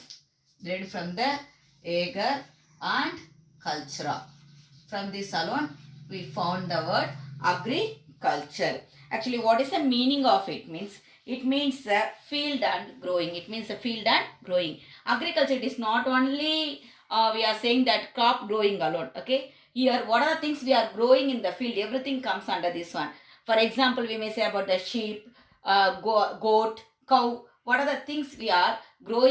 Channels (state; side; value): identical; both; correlation 1.00